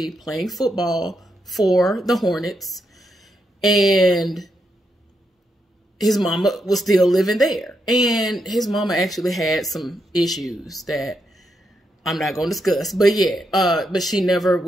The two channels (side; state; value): both; normal; correlation 0.82